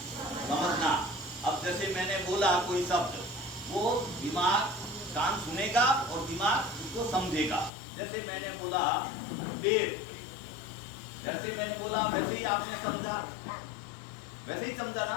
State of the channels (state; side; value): drops out; right; at 7.7 s